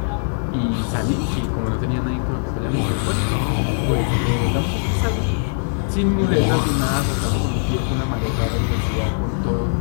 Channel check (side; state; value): right; silent; 65 dB below the other